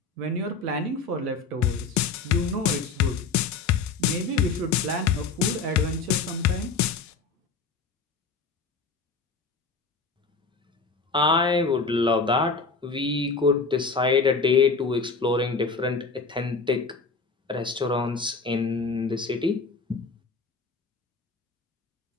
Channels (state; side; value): quieter; right; 4.4 dB